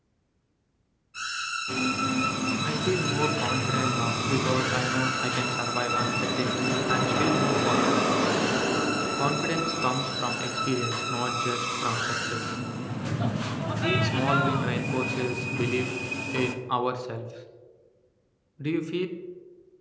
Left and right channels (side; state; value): both; identical; correlation 1.00